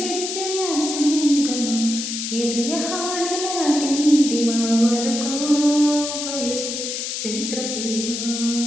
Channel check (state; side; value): noise; left; hiss, 4 dB below the sound